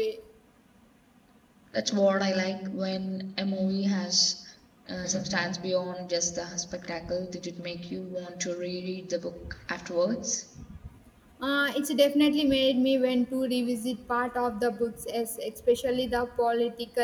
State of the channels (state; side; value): identical; both; correlation 1.00